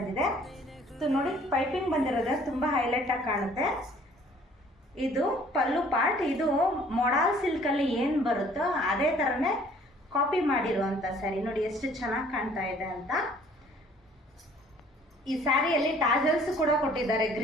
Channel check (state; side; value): normal; both; correlation 0.56